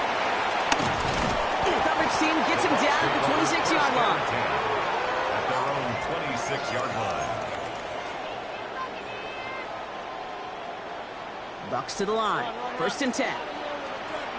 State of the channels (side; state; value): both; identical; correlation 1.00